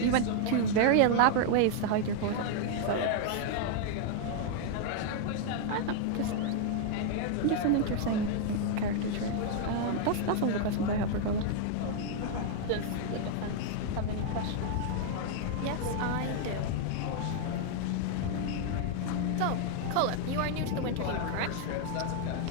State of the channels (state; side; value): different; both; correlation 0.00